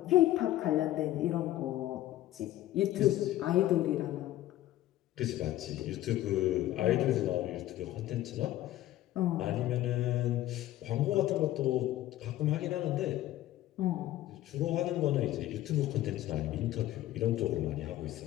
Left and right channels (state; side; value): quieter; right; 14.4 dB